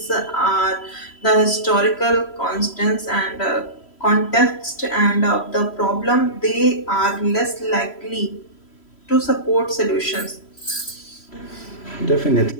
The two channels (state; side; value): late; right; 3.0 ms